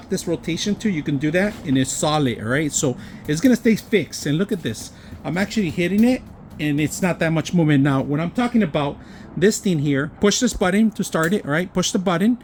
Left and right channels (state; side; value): identical; both; correlation 1.00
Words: this rotation too, you can do that, and it's solid, alright? So it's gonna stay fixed, and look at this. I'm actually hitting it, and it's not that much movement. Now, when I'm talking about this thing here, push this button to start it, alright? Push the button.